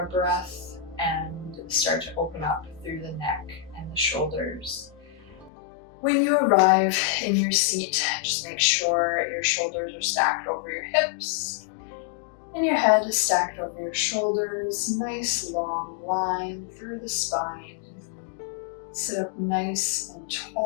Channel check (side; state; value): right; drops out; at 5.5 s